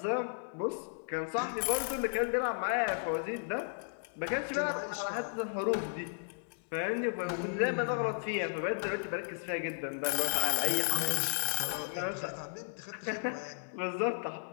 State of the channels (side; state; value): right; silent; digital silence